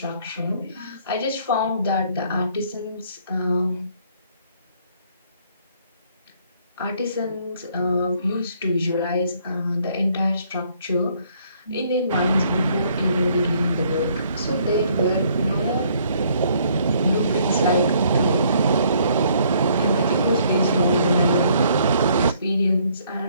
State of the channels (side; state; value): both; inverted; correlation -0.64